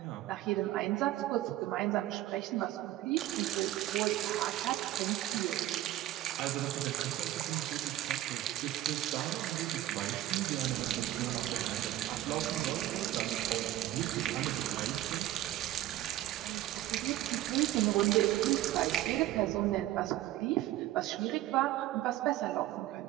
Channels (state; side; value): quieter; left; 14.5 dB